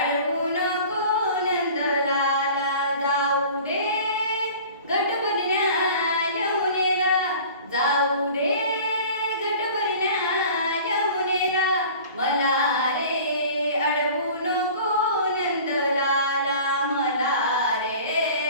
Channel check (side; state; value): both; inverted; correlation -0.43